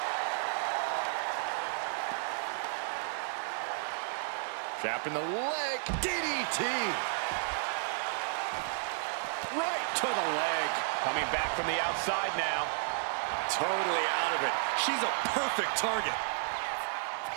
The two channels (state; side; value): silent; left; digital silence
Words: Trapping the leg. DDT. Right to the leg. Coming back from the outside now. Totally out of it. She's a perfect target.